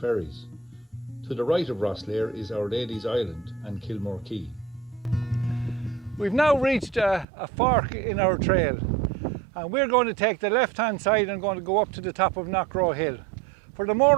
To the right of Rosslare is Our Lady's Island and Kilmore Quay. We've now reached a fork in our trail, and we're going to take the left hand side and going to go up to the top of Knockroe Hill. For the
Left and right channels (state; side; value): drops out; left; at 7.2 s